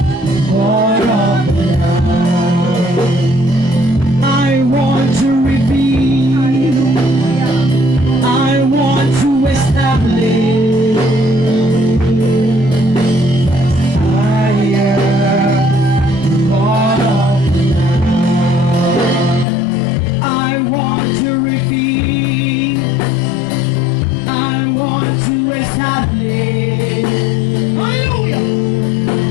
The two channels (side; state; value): right; drops out; at 19.5 s